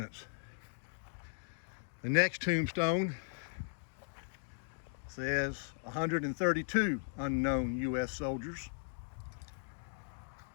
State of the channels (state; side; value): silent; right; digital silence